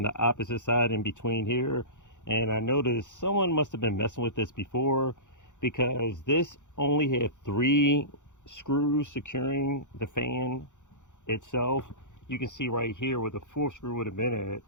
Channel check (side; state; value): right; late; 0.85 ms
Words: the opposite side in between here. And I noticed someone must have been messing with this before, because this only had 3 screws securing the fan itself. You can see right here where the 4th screw would have been at,